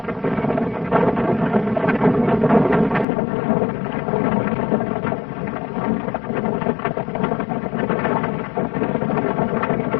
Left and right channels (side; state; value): right; drops out; at 3.1 s